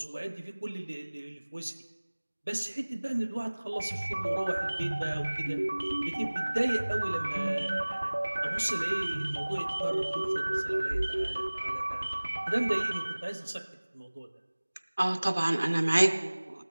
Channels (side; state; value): both; inverted; correlation -1.00